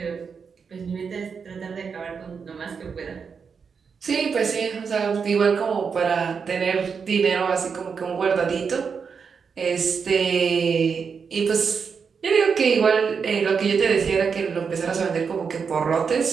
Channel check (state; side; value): quieter; left; 5.9 dB